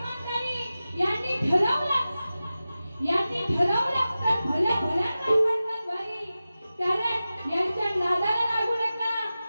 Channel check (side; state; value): both; inverted; correlation -0.94